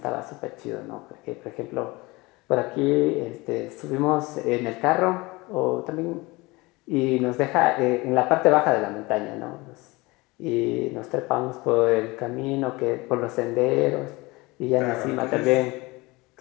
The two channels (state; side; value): quieter; right; 23.1 dB